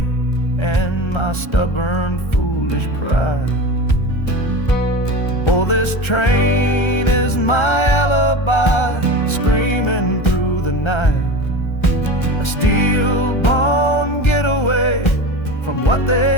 and my stubborn, foolish pride. Oh, this train is my alibi, screaming through the night, a steel-born getaway from what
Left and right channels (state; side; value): late; right; 1.3 ms